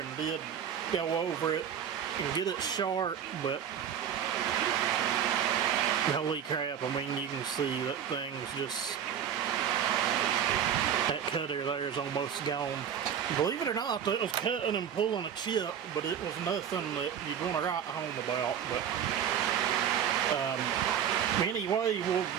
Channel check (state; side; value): quieter; left; 8.7 dB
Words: and did go over it and get it sharp, but holy crap, I mean, you can see that thing's just That cutter there is almost gone. Believe it or not, it was cutting and pulling a chip, but it was nothing that you'd want to write home about. But anyway, we'll